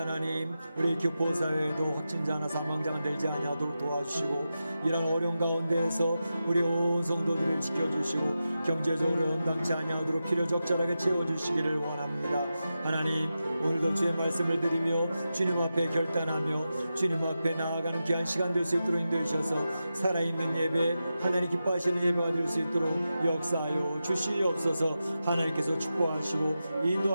우리 교포사회에도 확진자나 사망자가 늘지 아니하도록 도와주시고 이런 어려운 가운데에서 우리 온 성도들을 지켜주시고 경제적으로 연당치 아니하도록 필요 적절하게 채워주시기를 원합니다. 하나님, 오늘도 주의 말씀을 드리며 주님 앞에 결단하며 주님 앞에 나아가는 귀한 시간 될 수 있도록 인도해 주셔서 살아있는 예배, 하나님 기뻐하시는 예배가 될 수 있도록 역사하여 주시옵소서. 하나님께서 축복하시고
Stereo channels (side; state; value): both; inverted; correlation -0.91